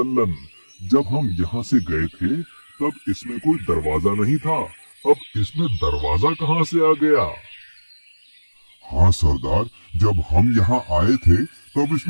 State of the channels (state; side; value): inverted; both; correlation -1.00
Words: जब हम यहाँ से गए थे तब इसमें कोई दरवाजा नहीं था। अब इसमें दरवाजा कहाँ से आ गया? हाँ सरदार, जब हम यहाँ आए थे तब